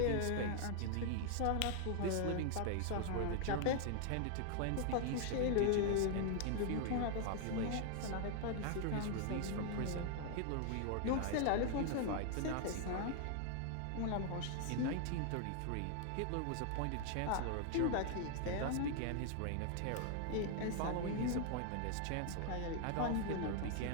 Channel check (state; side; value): different; both; correlation 0.00